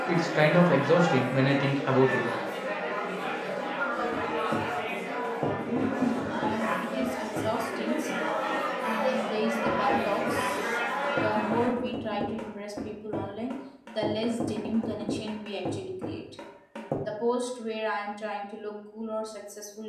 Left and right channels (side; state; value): both; identical; correlation 1.00